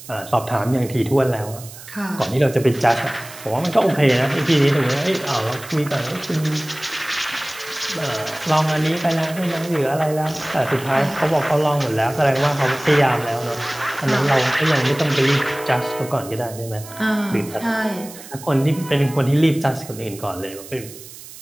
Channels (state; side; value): noise; right; hiss, 16 dB below the sound